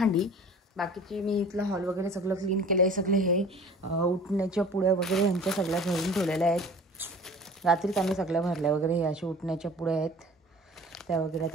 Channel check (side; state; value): both; normal; correlation 0.44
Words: बाकीची मी इथला हॉल वगैरे सगळं क्लीन केलं आहे. सगळे हे उठण्याच्या पुड्या वगैरे ह्यांच्या सगळ्या भरून ठेवलेल्या आहेत. रात्रीच आम्ही सगळ्या भरल्या वगैरे. हे अशा उठण्याच्या पुड्या आहेत त्या वगैरे.